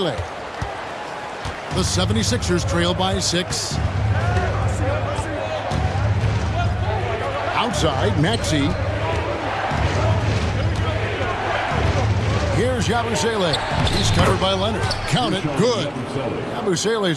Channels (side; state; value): both; identical; correlation 1.00